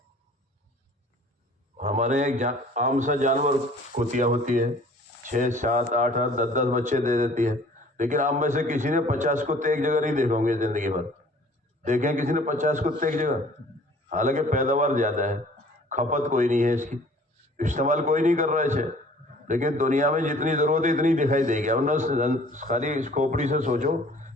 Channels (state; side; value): normal; both; correlation 0.52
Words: ہمارے ایک عام سا جانور کتیا ہوتی ہے، 6، 7، 8، 10 بچے دے دیتی ہے. لیکن آپ میں سے کسی نے 50 کتے ایک جگہ نہیں دیکھے ہوں گے زندگی بھر. دیکھیں کسی نے 50 کتے ایک جگہ؟ حالانکہ پیداوار زیادہ ہے، کھپت کوئی نہیں ہے اس کی، استعمال کوئی نہیں کر رہا ہے اسے. لیکن دنیا میں جتنی ضرورت ہے اتنی دکھائی دے گی. ورنہ خالی اس کھوپڑی سے سوچو